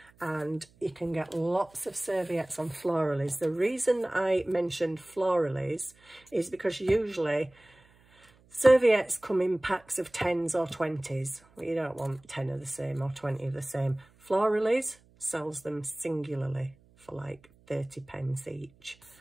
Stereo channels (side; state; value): right; noise; hum, 30 dB below the sound